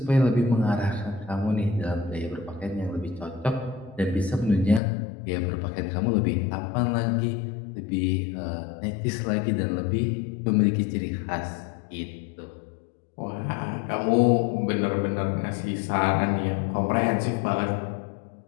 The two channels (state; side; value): drops out; right; at 4.8 s